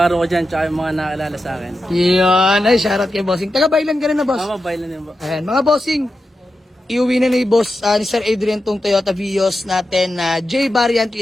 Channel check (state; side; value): normal; both; correlation 0.90